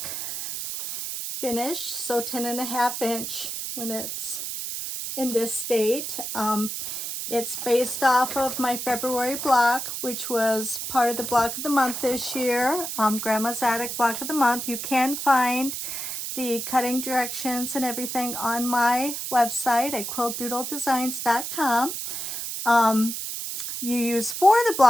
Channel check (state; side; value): noise; right; hiss, 5 dB below the sound